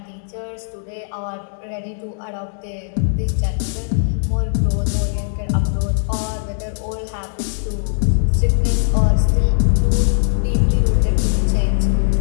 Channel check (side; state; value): right; silent; digital silence